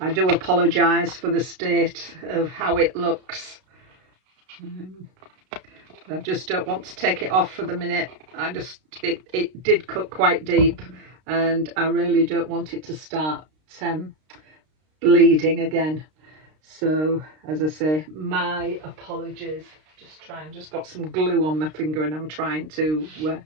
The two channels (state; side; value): late; left; 32 ms